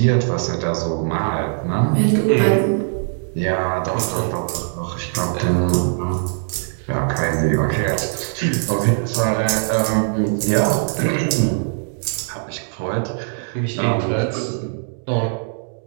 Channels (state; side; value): silent; left; digital silence